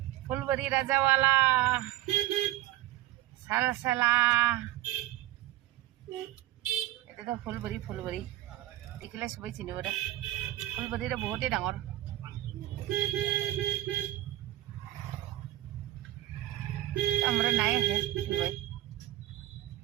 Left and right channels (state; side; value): quieter; left; 15.1 dB